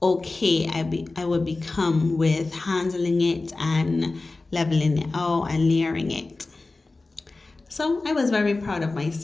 okay I would become with handling it and leveling it out and layering it. So I was very proud of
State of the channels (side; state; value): right; quieter; 3.4 dB